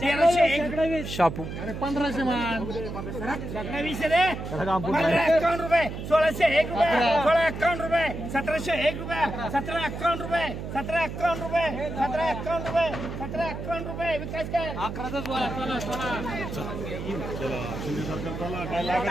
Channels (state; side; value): noise; right; hum, 7 dB below the sound